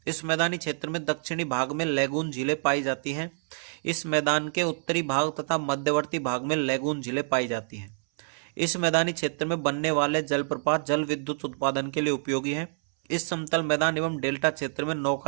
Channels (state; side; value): silent; left; 60 dB below the other